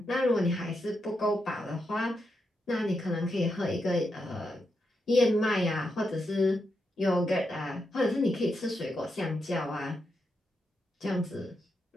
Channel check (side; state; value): both; normal; correlation 0.84